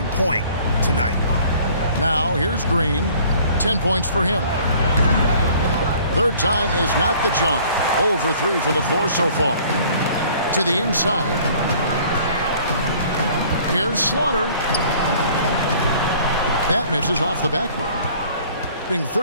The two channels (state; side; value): inverted; both; correlation -0.53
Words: point tonight. Now here's Green. 10 points for him. Third time is not the jump. 0 for 3 from the floor so far. To the inside. Here's Slaughter. That misses off the backboard. Being